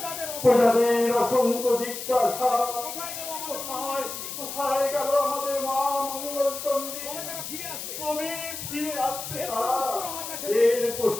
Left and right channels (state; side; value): noise; left; hiss, 8 dB below the sound